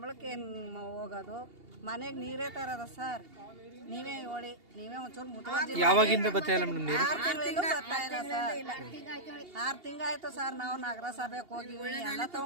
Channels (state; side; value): late; left; 2.8 ms